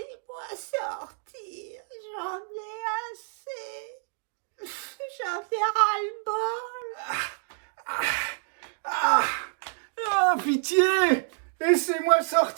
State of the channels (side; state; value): left; silent; digital silence